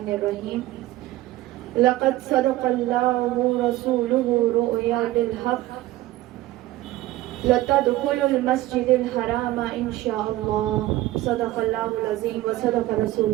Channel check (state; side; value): quieter; left; 16.1 dB